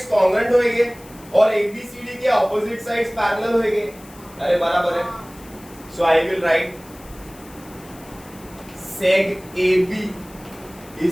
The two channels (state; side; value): noise; left; hiss, 22 dB below the sound